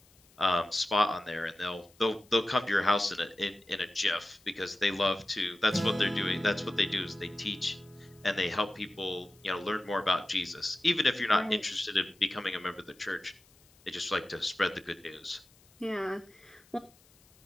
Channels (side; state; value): left; noise; hiss, 29 dB below the sound